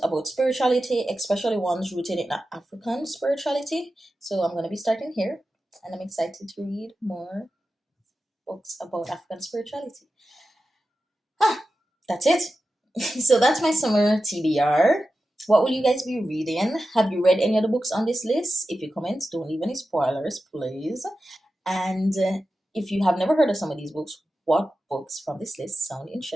about spirituality, especially ones rooted in African spirituality. So I'm going to be starting here, and I'm excited to read more books about African spirituality. Ah, that's it. So that's my summer TBR. What will you guys be reading? Have you read any of the books on this list? If you comment, don't leave any spoilers, please. And if you have never heard of some of these books, what books from this list sound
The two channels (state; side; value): normal; both; correlation 0.92